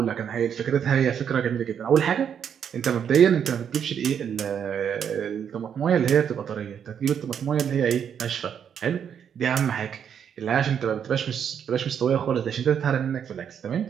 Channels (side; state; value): left; quieter; 8.1 dB